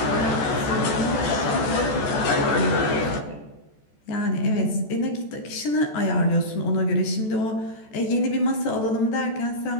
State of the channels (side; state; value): right; late; 14 ms